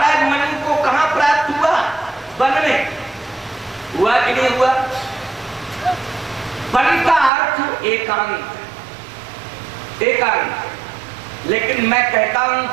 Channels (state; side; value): drops out; left; at 7.3 s